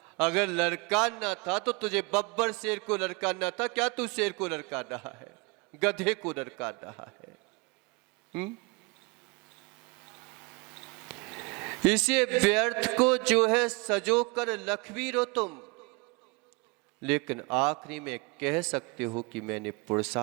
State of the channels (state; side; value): quieter; left; 28.2 dB